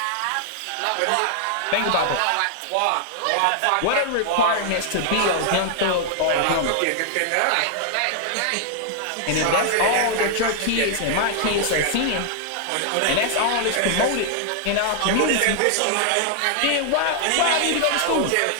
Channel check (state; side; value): different; both; correlation 0.00